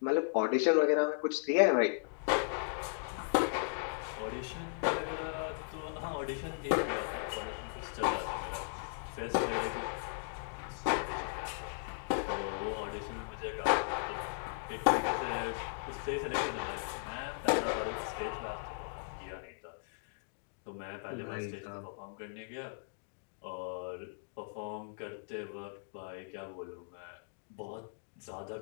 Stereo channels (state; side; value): silent; right; digital silence